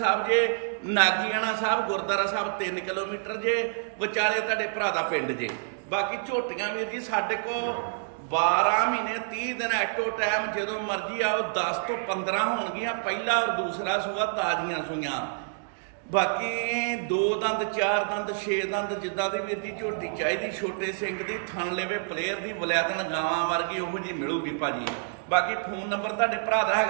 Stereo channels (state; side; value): silent; left; digital silence